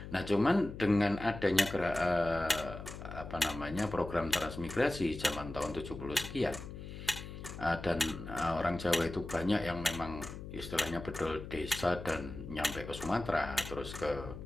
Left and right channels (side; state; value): left; noise; hum, 10 dB below the sound